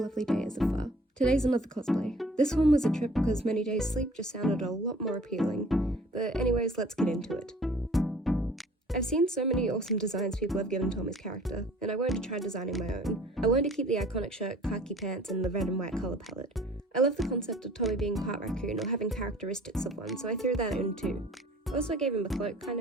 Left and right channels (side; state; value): both; normal; correlation 0.51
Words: day as of far. Today's another cosplay. This one was a trip because many days sleep just sounded a lot more appealing. But anyways, let's get into it. I've seen so many awesome designs people have given Tommy's character, and I wanted to try designing my own. I wanted to keep the iconic shirt, khaki pants, and the red and white colour palette. I love the concept of Tommy being part raccoon or having characteristics of one, so I threw that in too. Also, I gave him a cloak, kind